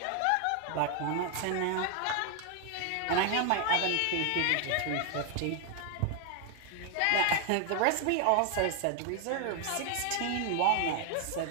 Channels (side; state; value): both; different; correlation 0.01